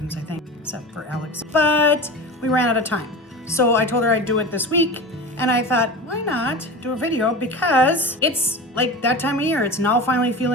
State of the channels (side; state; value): both; normal; correlation 0.30